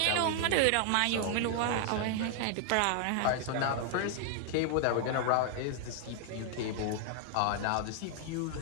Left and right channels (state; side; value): different; both; correlation 0.00